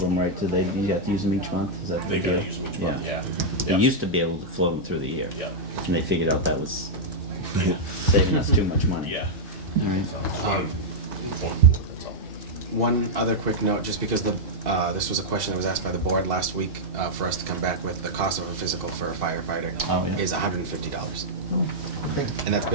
them, right? Do they? You have to use them each month? Is that the They gotta deal? use them each month, yeah. They Yeah. used to be able to float them through the year. Yeah. And they figured out that was saving us too much money. Yeah. All right. That's all. One other quick note, just because this was a question that was asked by the board last week, for us to come back with the cost of a physical for a firefighter Oh, yeah. is $150. Okay. And that's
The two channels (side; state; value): both; normal; correlation -0.05